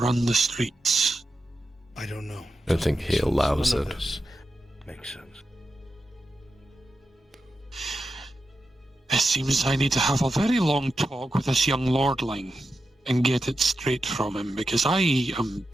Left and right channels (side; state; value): both; normal; correlation 0.89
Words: the streets. I don't know. I don't think he allows it. Makes sense. It seems I need to have a very long talk with this young lordling and get it straight from him, because I am